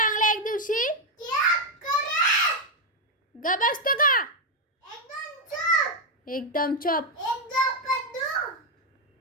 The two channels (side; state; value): both; normal; correlation 0.04